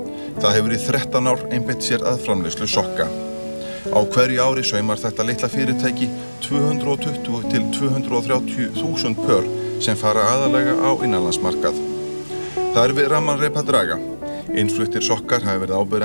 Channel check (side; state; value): both; inverted; correlation -1.00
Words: Það hefur í 13 ár einbeitt sér að framleiðslu sokka. Á hverju ári saumar þetta litla fyrirtæki 220 til 230.000 pör sem fara aðallega á innanlandsmarkað. Það við ramman reip að draga. Innfluttir sokkar hafa verið